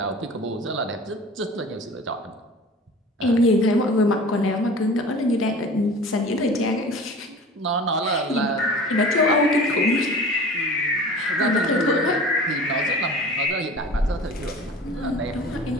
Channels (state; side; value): normal; both; correlation 0.40